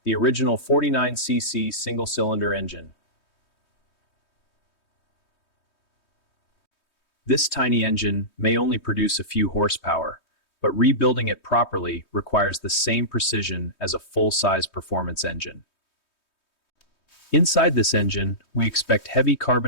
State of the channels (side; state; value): right; late; 3.2 ms